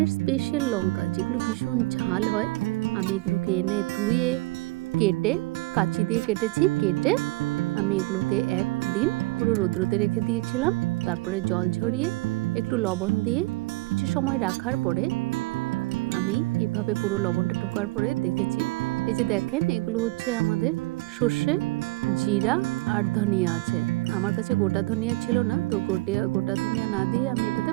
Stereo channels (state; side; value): quieter; left; 22.1 dB